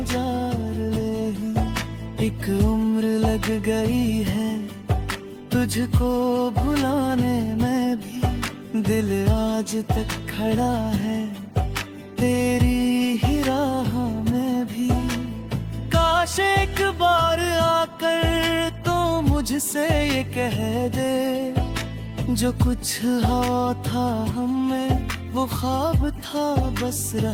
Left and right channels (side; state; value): both; identical; correlation 1.00